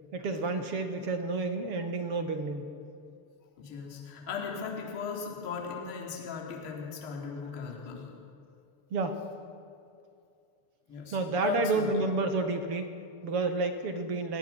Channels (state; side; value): late; left; 6.3 ms